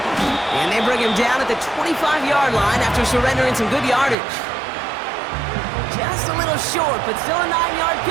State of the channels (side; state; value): left; drops out; at 4.2 s